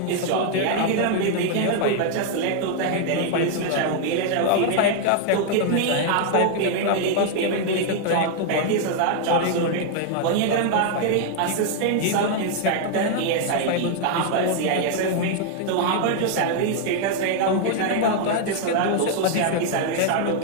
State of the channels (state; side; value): different; both; correlation 0.00